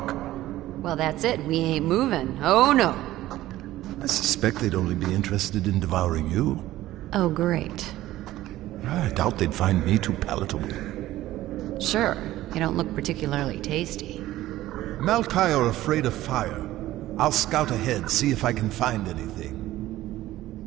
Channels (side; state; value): left; quieter; 15.4 dB